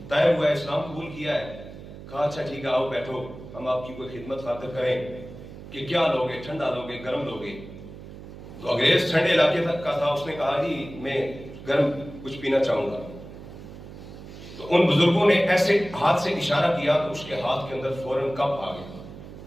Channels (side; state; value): right; noise; hum, 14 dB below the sound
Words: طائب ہوا ہے، اسلام قبول کیا ہے. کہا اچھا ٹھیک ہے آؤ بیٹھو، ہم آپ کی کوئی خدمت خاطر کریں. کہ کیا لوگے، ٹھنڈا لوگے، گرم لوگے؟ تو انگریز ٹھنڈے علاقے تک کا تھا، اس نے کہا جی میں گرم کچھ پینا چاہوں گا. تو ان بزرگوں نے ایسے ہاتھ سے اشارہ کیا تو اس کے ہاتھ کے اندر فوراً کپ آ گیا،